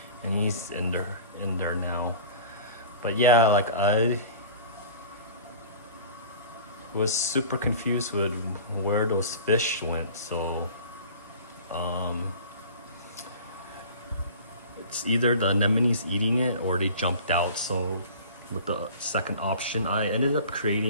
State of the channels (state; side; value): inverted; both; correlation -0.41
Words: and he's in there now. But yeah, like I was super confused with where those fish went. So it's either the anemone's eating it or they jumped out. So with the second option, I ended up